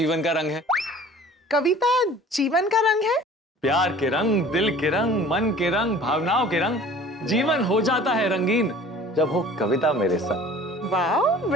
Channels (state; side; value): normal; both; correlation 0.47